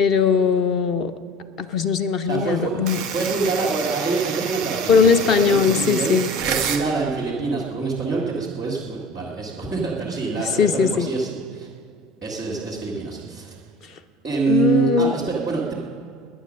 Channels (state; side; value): normal; both; correlation 0.42